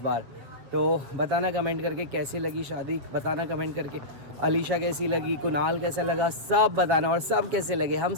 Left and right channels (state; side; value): late; left; 7.4 ms